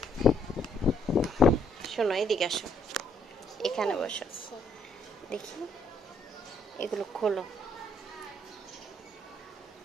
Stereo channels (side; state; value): both; normal; correlation 0.69